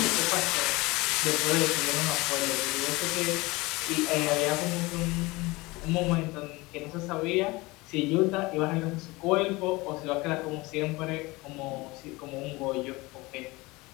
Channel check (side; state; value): right; quieter; 22.6 dB